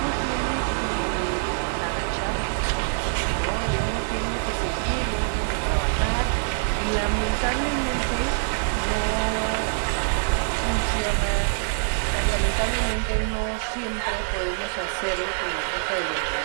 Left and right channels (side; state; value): left; silent; digital silence